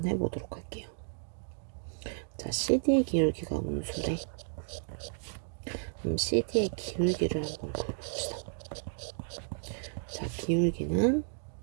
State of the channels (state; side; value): silent; left; digital silence